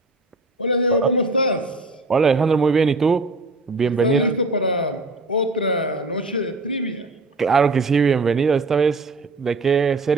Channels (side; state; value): left; quieter; 3.2 dB